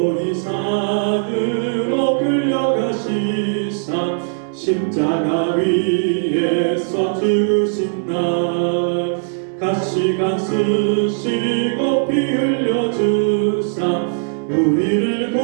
산으로 끌려가시사 십자가 위에서 죽으신 날 가시관 쓰시고 피 흘려주사 우리를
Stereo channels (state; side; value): silent; left; digital silence